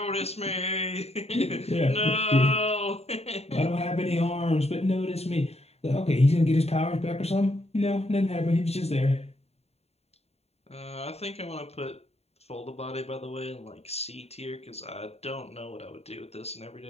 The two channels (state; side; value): late; right; 0.30 ms